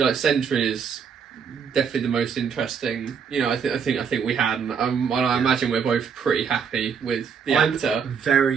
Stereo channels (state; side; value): quieter; left; 6.7 dB